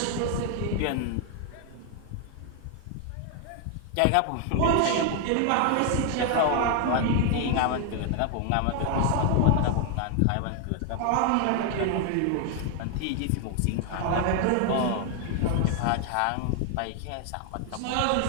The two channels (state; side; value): different; both; correlation 0.00